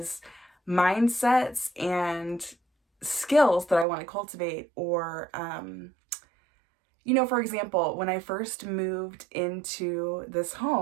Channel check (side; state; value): left; drops out; at 3.9 s